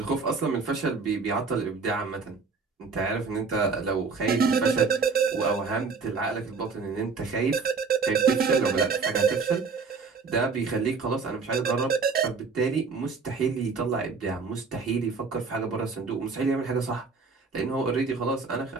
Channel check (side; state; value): left; quieter; 4.8 dB